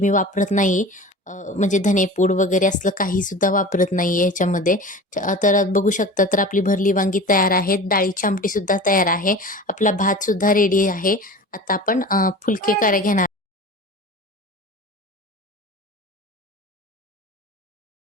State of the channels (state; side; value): normal; both; correlation 0.36